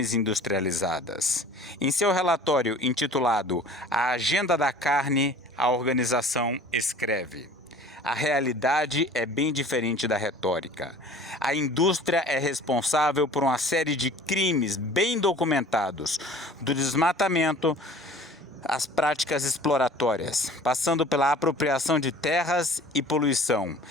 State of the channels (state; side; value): normal; both; correlation 0.46